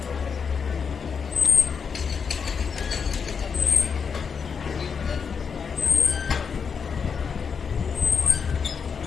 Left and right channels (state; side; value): quieter; right; 6.1 dB